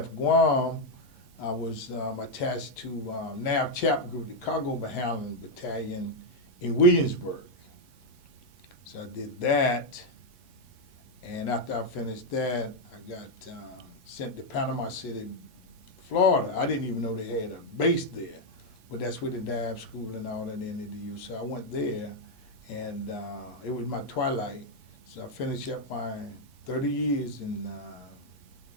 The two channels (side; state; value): right; late; 3.1 ms